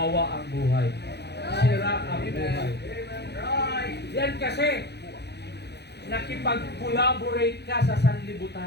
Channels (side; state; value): right; late; 0.49 ms